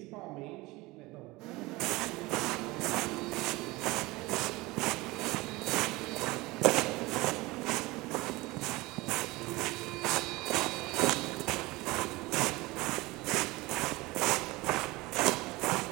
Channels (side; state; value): left; quieter; 21.7 dB